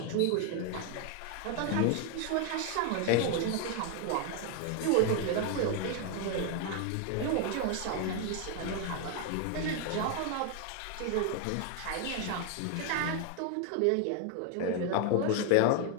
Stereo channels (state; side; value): different; both; correlation 0.01